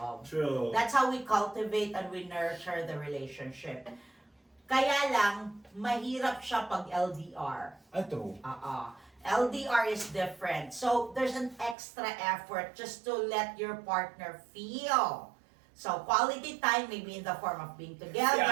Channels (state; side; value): drops out; left; at 11.8 s